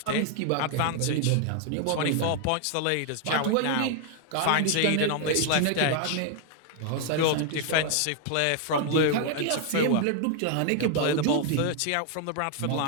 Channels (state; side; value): different; both; correlation 0.00